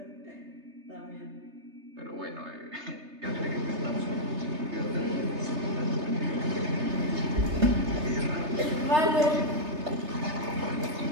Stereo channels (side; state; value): left; late; 3.3 ms